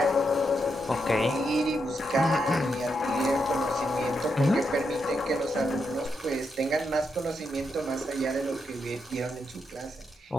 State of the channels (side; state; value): both; normal; correlation 0.82